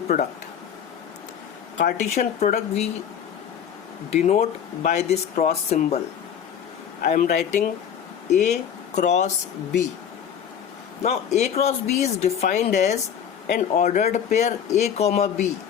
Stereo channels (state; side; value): quieter; right; 8.5 dB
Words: product. Cartesian product we denote by this cross symbol. I am writing A cross B. Now A cross B is defined as an ordered pair A, B,